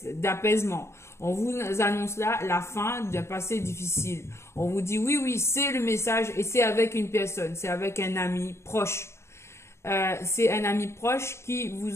d'apaisement. On vous annonce là la fin d'un passé difficile. On vous dit oui, c'est le message et c'est avec une personne, c'est avec un ami proche. C'est un ami proche qui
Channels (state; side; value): late; right; 0.13 ms